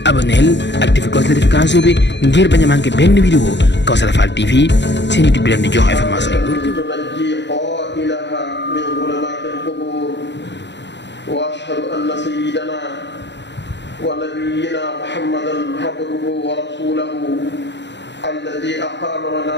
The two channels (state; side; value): late; right; 0.52 ms